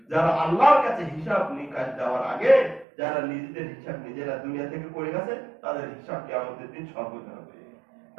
যারা আল্লাহর কাছে হিসাব নিকাশ দেওয়ার আগে, যারা নিজেদের হিসাব নিজেরা দুনিয়া থেকে করে গেছে, তাদের হিসাব কিয়ামতের দিন সহজ হবে।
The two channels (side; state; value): left; drops out; at 2.9 s